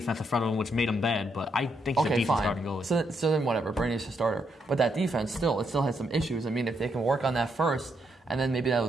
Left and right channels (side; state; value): both; normal; correlation 0.78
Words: in front of him, which made him bad. But I think he's a decent starting goalie. So then whatever, Bernier's a starter, but that defense still has some issues. I mean, if they can work on that first, and then maybe